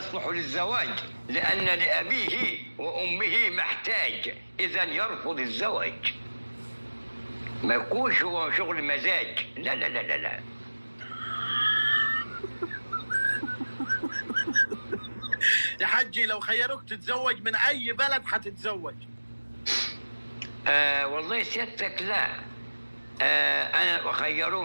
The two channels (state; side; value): inverted; both; correlation -1.00